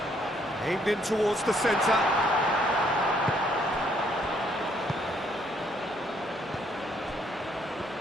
Aimed in towards the centre.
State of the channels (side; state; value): both; normal; correlation 0.68